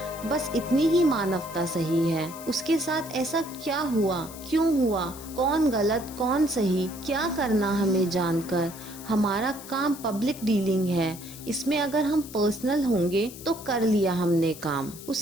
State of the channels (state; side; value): noise; left; hiss, 15 dB below the sound